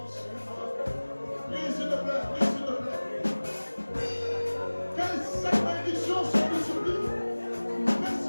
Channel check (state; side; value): inverted; both; correlation -1.00